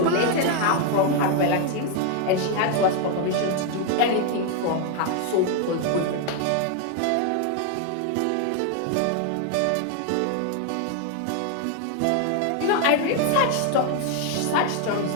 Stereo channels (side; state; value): both; different; correlation 0.01